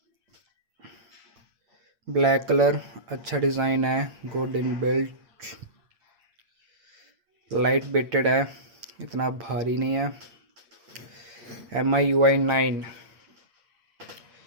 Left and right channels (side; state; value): left; late; 8.5 ms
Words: ब्लैक कलर, अच्छा डिज़ाइन है, good in built, light weighted है, इतना भारी नहीं है। MIUI 9